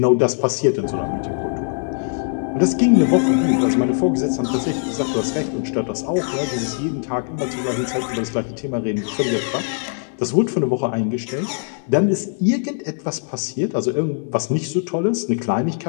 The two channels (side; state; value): right; silent; 62 dB below the other